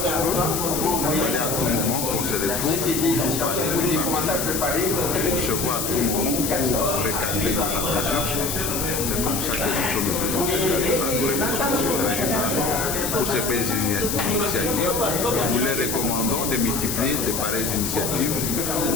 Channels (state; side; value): noise; left; hiss, 2 dB below the sound